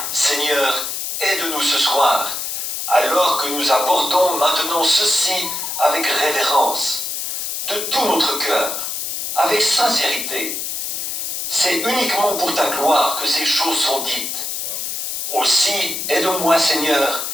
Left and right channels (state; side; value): noise; left; hiss, 3 dB below the sound